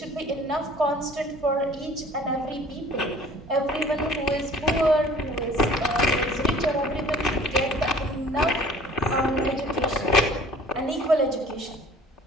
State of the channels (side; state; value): both; normal; correlation 0.50